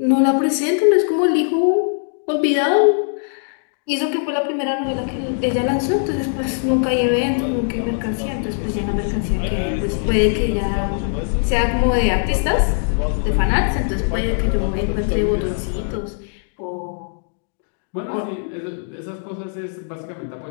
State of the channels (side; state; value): right; silent; digital silence